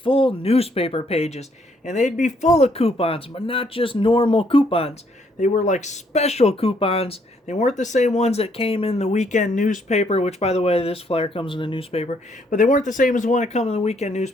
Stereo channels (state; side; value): normal; both; correlation 0.69